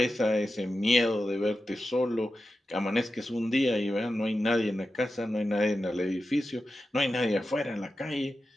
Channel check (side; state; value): both; normal; correlation 0.92